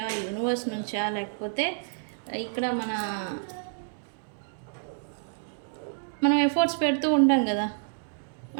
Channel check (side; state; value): left; silent; digital silence